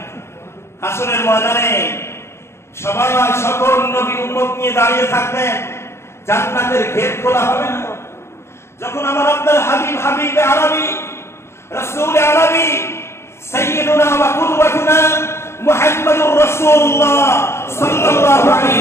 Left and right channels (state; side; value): late; right; 0.13 ms